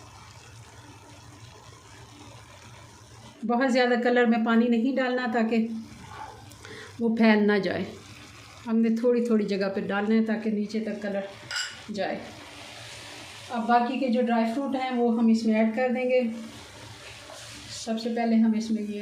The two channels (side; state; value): both; identical; correlation 1.00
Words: बहुत ज़्यादा कलर में पानी नहीं डालना ताकि वो फैल ना जाए। हमने थोड़ी थोड़ी जगह पे डालना है ताकि नीचे तक कलर जाए। अब बाकी के जो ड्राई फ्रूट हैं वो हम इसमें ऐड कर देंगे। सबसे पहले हम इसमें